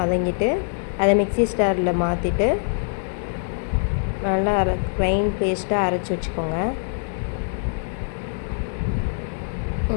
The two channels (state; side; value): silent; right; 63 dB below the other